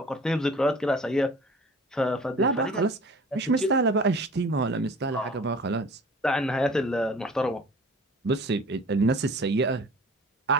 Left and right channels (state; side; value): normal; both; correlation 0.46